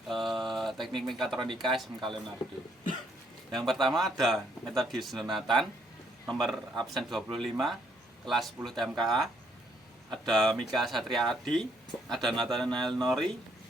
teknik mekatronika SMK Leonardo. Yang pertama ada Metodius Jonathan, nomor absen 25, kelas 10 TMKA. Ada Mika Satria Adi, ada Nathanael Nori,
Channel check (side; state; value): both; normal; correlation 0.69